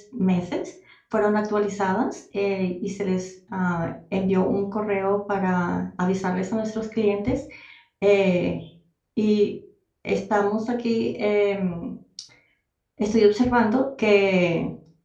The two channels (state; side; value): identical; both; correlation 1.00